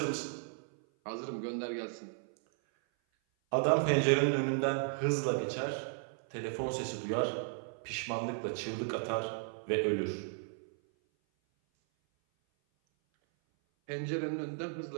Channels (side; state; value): left; silent; 54 dB below the other